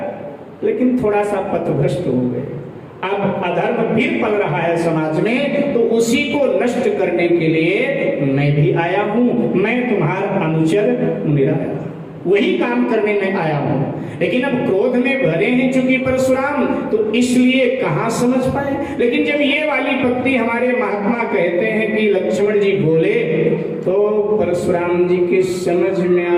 लेकिन थोड़ा सा पथभ्रष्ट हो गए। अब अधर्म फिर पल रहा है समाज में, तो उसी को नष्ट करने के लिए मैं भी आया हूं। मैं तुम्हारा अनुचर मुनिराया, वही काम करने में आया हूं। लेकिन अब क्रोध में भरे हैं चूंकि परशुराम, तो इसलिए कहां समझ पाए। लेकिन जब ये वाली पंक्ति हमारे महात्मा कहते हैं कि लक्ष्मण जी बोले, तो परशुराम जी के समझ में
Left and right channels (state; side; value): identical; both; correlation 1.00